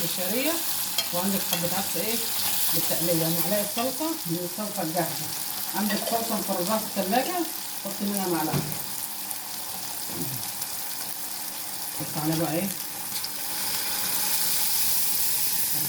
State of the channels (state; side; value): identical; both; correlation 1.00